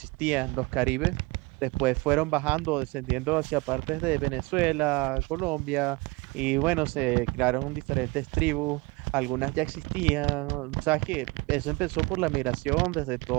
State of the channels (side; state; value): left; quieter; 25.6 dB